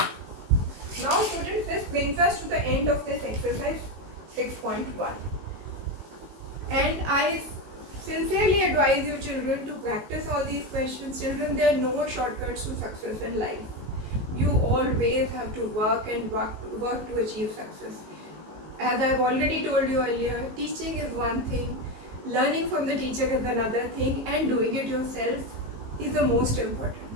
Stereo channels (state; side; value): late; left; 19 ms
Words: Now, students, this brings us to the end of this exercise 6.1. And I sincerely advise you, children, to practice all these questions. Children, there are no shortcuts to success in life. You always have to work and work to achieve success. As I have already told you earlier, teaching is one thing, learning from the teacher is another thing, and doing it yourself is the most